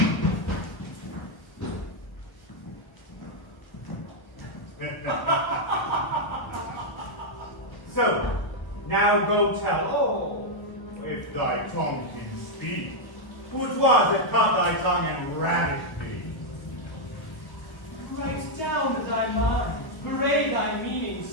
So, now go tell all, if thy tongue can speak, who 'twas that cut thy tongue and ravished thee. Write down thy mind, parade thy meaning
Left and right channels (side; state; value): right; late; 1.5 ms